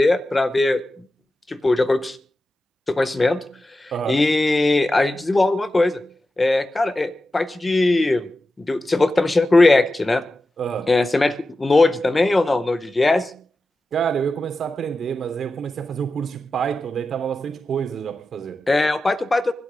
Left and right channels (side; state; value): both; normal; correlation 0.92